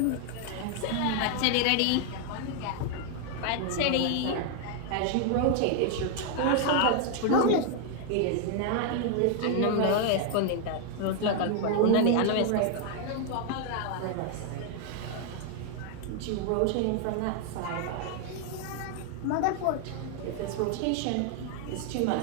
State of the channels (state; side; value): different; both; correlation 0.00